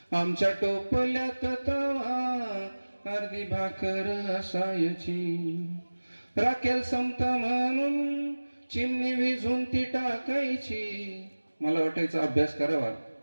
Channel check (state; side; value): inverted; both; correlation -1.00